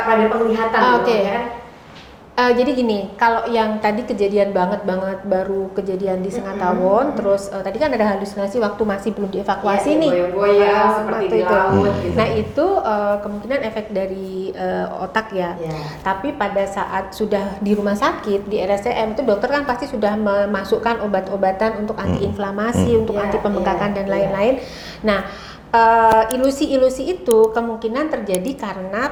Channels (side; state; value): both; identical; correlation 1.00